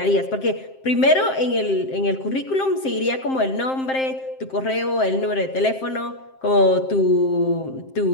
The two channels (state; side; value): late; right; 7.6 ms